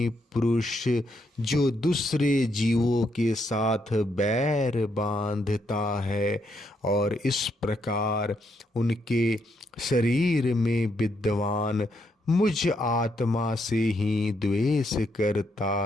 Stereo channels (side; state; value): both; normal; correlation 0.77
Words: पुरुष जो दूसरे जीवों के साथ बैर बांधता है और इस प्रकार उनके शरीर में विद्वान मुझ आत्मा से ही द्वेष